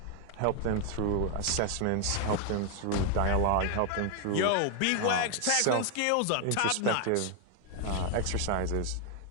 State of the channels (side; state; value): both; different; correlation 0.00